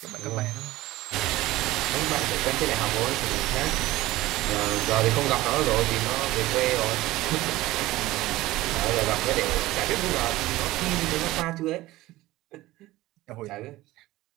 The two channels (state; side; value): quieter; left; 17.6 dB